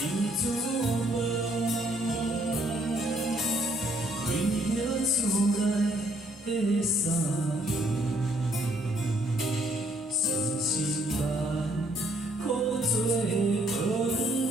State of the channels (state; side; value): normal; both; correlation 0.67